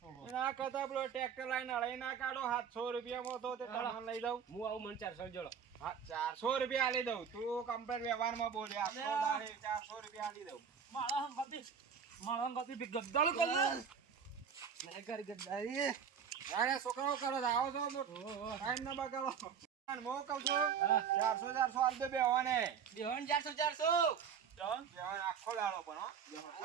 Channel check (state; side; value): quieter; left; 7.1 dB